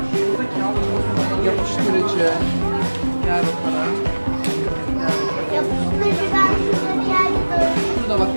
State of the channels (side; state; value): both; inverted; correlation -1.00